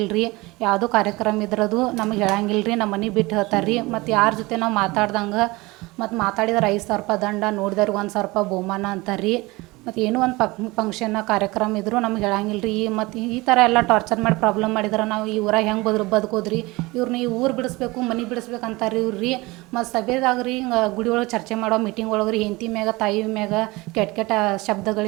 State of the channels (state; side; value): quieter; left; 22.4 dB